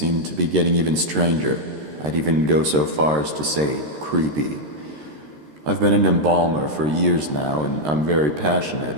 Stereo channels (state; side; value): late; left; 13 ms